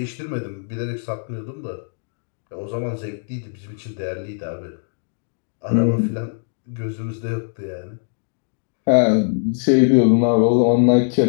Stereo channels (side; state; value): right; silent; digital silence